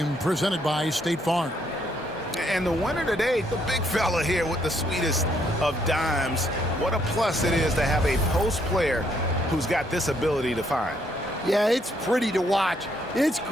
presented by State Farm. And the winner today, the big fella here with the sweetest of dimes. What a plus it is to have a post player who's got this ability to find. Yeah, it's pretty to watch. It's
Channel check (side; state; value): both; normal; correlation 0.71